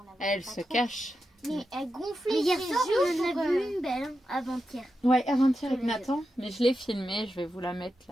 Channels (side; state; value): both; normal; correlation 0.89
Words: l'avait. Elle se cache. Mais elle gonflait. Mais hier soir, on en a vu une belle, hein, avant-hier. Ouais, avant-hier avec Nathan. Mais je l'ai filmée, je vais vous la mettre